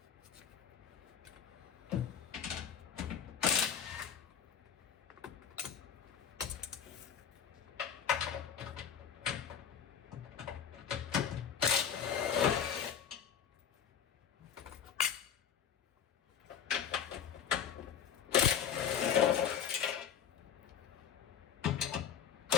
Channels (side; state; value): right; quieter; 8.1 dB